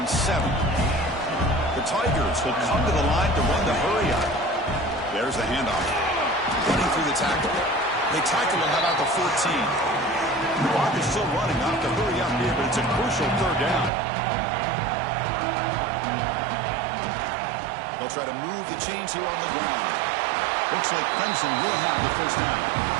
7. The Tigers will come to the line to run the hurry up. There's the handoff. Running through the tackle. They tackle him about the 14. The clock is still running. Not to hurry up here, but it's a crucial third down. They'll try to move the chains here on the ground. Looks like Clemson will have the first down.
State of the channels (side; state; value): left; drops out; at 13.9 s